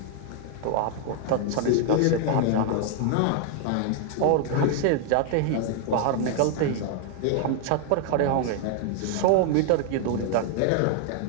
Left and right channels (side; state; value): both; different; correlation 0.00